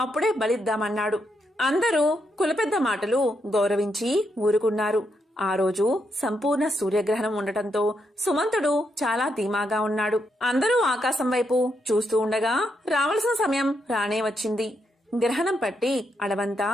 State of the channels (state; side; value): normal; both; correlation 0.80